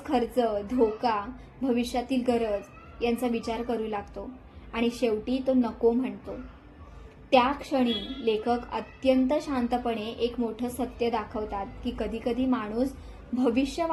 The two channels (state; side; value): identical; both; correlation 1.00